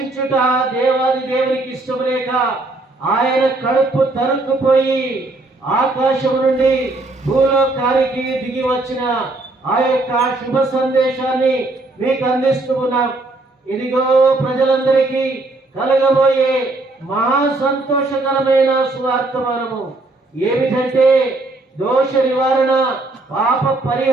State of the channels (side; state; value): left; quieter; 3.0 dB